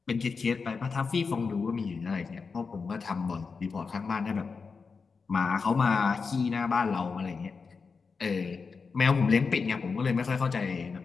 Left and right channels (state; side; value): quieter; right; 5.0 dB